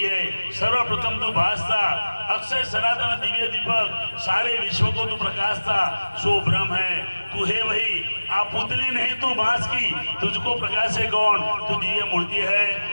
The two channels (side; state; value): both; inverted; correlation -1.00